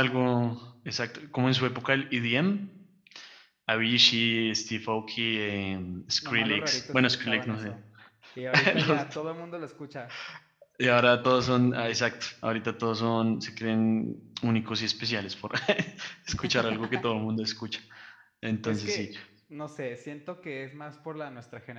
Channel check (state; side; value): identical; both; correlation 1.00